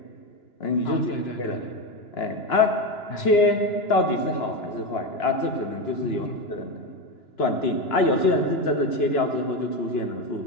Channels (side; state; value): right; late; 2.9 ms